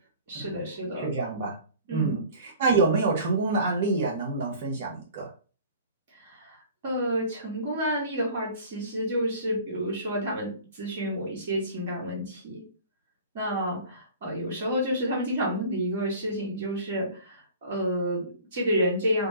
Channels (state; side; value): inverted; both; correlation -0.44